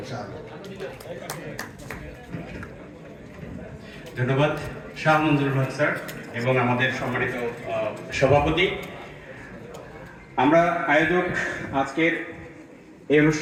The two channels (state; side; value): identical; both; correlation 1.00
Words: ধন্যবাদ শাহ মঞ্জুর হক স্যার এবং আমাদের সম্মানিত সভাপতি। আমরা আয়োজক, আজকের এই